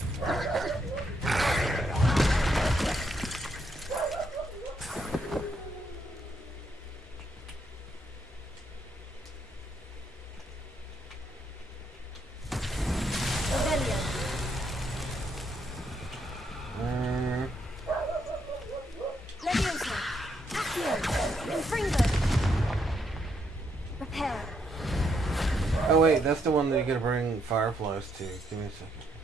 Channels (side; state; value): both; normal; correlation 0.76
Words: Leviosa. Accio. Confringo. Repair. Oh wait, that's the one that you gotta bring fireflies to. Give me a second.